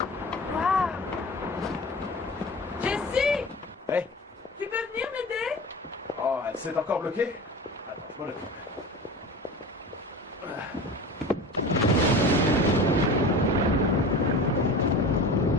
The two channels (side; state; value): both; normal; correlation 0.34